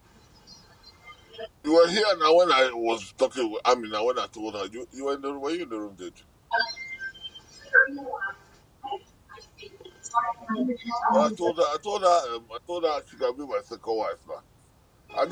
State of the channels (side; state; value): both; identical; correlation 1.00